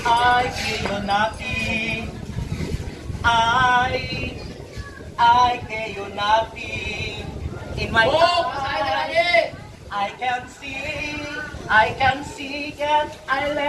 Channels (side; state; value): both; identical; correlation 1.00